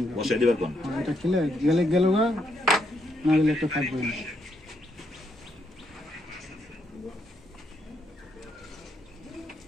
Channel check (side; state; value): both; normal; correlation 0.77